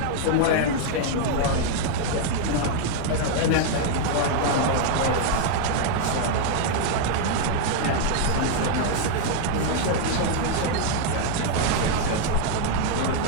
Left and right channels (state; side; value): different; both; correlation 0.00